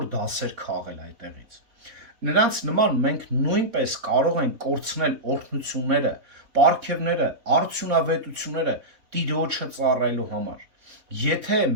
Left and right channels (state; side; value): late; left; 3.6 ms